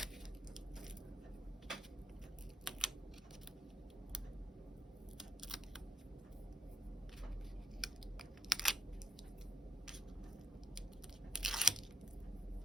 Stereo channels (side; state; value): both; normal; correlation 0.67